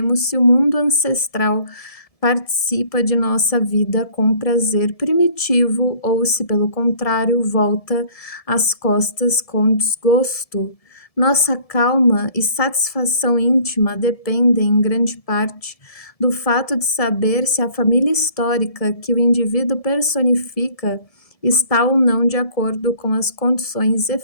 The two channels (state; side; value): late; right; 1.7 ms